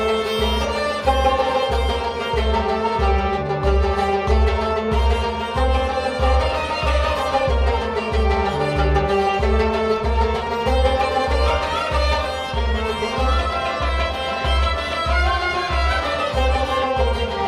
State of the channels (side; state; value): both; identical; correlation 1.00